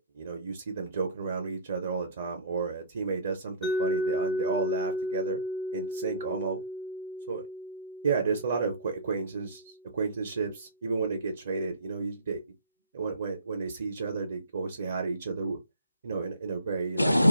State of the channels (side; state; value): both; inverted; correlation -0.45